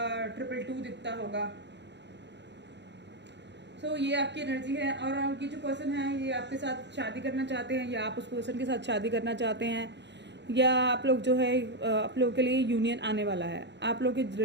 222 दिखता होगा। सो ये आपकी एनर्जी है। और ये जो पर्सन है ये आपके साथ शादी करना चाहते हैं, या आप उस पर्सन के साथ शादी करना चाहते हैं, या आप लोग जो है आप लोगों के लिए यूनियन आने वाला है। आप लोग की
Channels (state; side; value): late; left; 0.51 ms